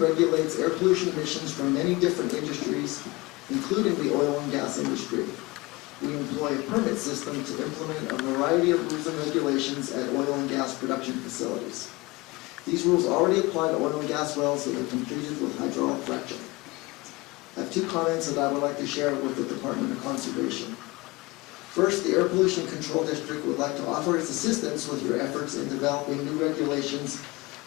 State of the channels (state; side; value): quieter; right; 23.2 dB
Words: air pollution emissions from many different industries, including the oil and gas industry. We employ a permit system to implement a variety of rules and regulations at oil and gas production facilities. These rules already apply to oil and gas wells that are completed with hydraulic fracturing. I have 2 comments that I would like to share with the Department of Conservation. First, the Air Pollution Control District would like to offer its assistance with your efforts in developing new regulations